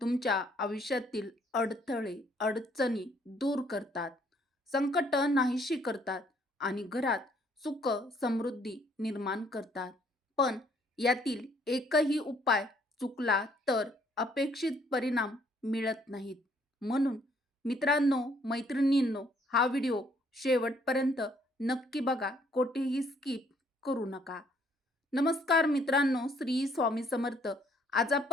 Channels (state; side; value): normal; both; correlation 0.65